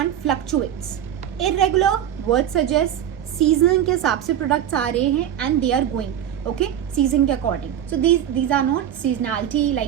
fluctuates, irregular word suggest season के हिसाब से products आ रहे हैं and they are going okay season के according. So these are not seasonality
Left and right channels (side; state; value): left; quieter; 10.4 dB